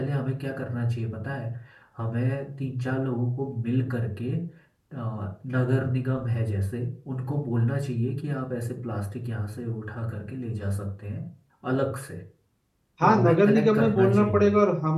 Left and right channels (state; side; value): identical; both; correlation 1.00